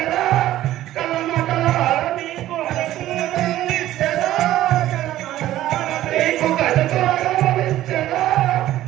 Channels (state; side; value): quieter; left; 14.0 dB